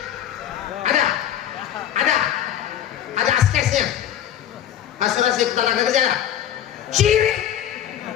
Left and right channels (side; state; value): right; quieter; 10.9 dB